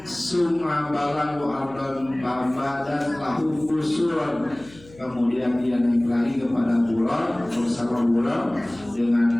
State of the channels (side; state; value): left; noise; hum, 23 dB below the sound